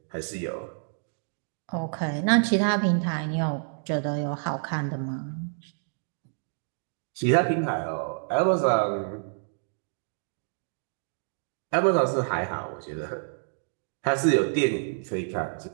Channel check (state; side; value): silent; left; digital silence